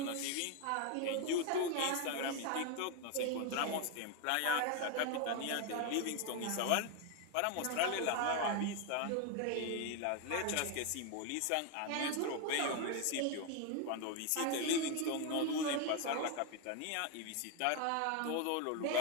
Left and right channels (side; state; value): both; different; correlation 0.01